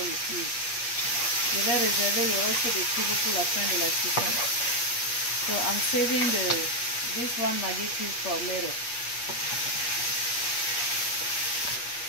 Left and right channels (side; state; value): right; late; 8.3 ms